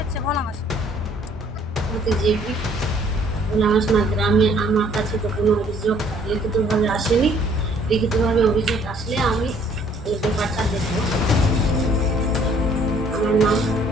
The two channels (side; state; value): both; normal; correlation 0.61